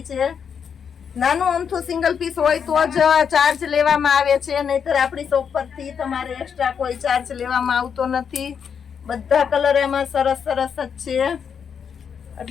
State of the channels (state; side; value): quieter; right; 7.1 dB